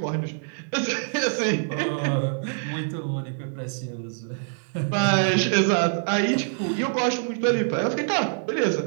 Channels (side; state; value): left; silent; digital silence